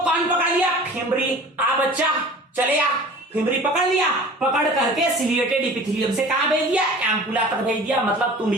पकड़ लिया? फिमरी। आ बच्चा चले आ, फिमरी पकड़ लिया, पकड़ करके सिलिएटेड इपिथेलियम से कहां भेज दिया? एम्पुला तक भेज दिया, मतलब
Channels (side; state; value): both; normal; correlation 0.43